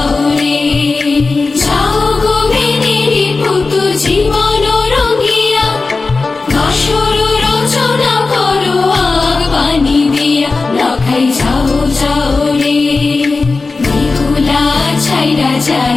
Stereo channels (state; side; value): quieter; right; 3.9 dB